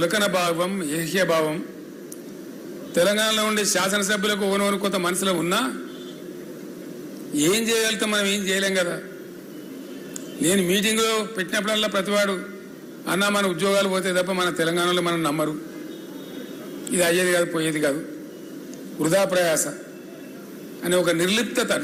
భావం, ఏహ్య భావం. తెలంగాణలో ఉండే శాసనసభ్యులకు ఓనోను కొంత మనసులో ఉన్నా ఏం చేయగలుగుతాం, మనం ఏం చేయలేం కదా. నేను మీటింగ్లో పెట్టినప్పుడల్లా ప్రతివాడు అన్నా మన ఉద్యోగాలు పోతే తప్ప మన తెలంగాణలో మనం నమ్మరు, ఇది అయ్యేది కాదు పోయేది కాదు, వృధా ప్రయాస అనే ఒక నిర్లిప్తత,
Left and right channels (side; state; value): both; identical; correlation 1.00